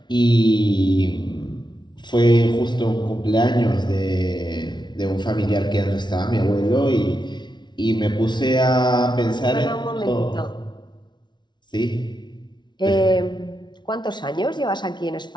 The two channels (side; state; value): right; late; 0.21 ms